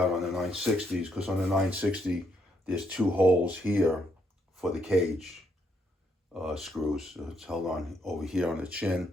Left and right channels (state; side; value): normal; both; correlation 0.75